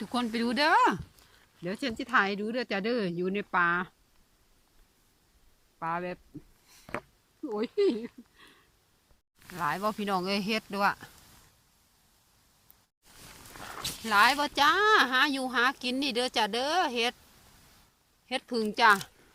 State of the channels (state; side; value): identical; both; correlation 1.00